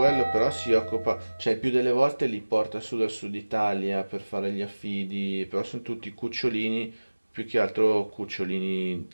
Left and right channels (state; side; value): inverted; both; correlation -1.00